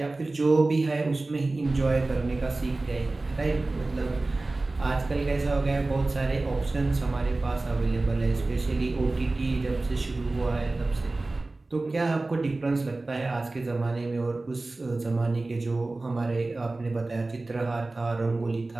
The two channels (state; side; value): quieter; left; 3.1 dB